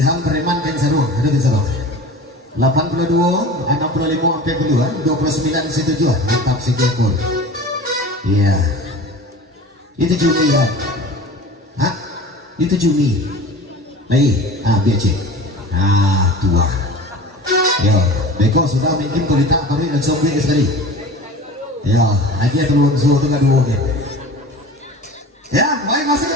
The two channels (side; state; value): both; normal; correlation 0.38